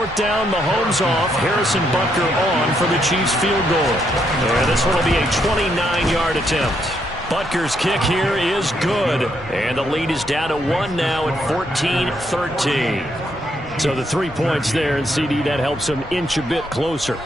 down, Mahomes off, Harrison Butker on for the Chiefs field goal. And this one will be a 29-yard attempt. Butker's kick here is good. And the lead is down to 1 now at 14-13. So the 3 points there, and CD, that helps them inch a bit closer.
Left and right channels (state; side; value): normal; both; correlation 0.76